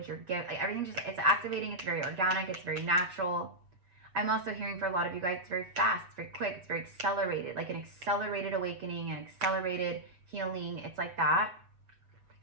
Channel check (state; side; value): late; left; 7.2 ms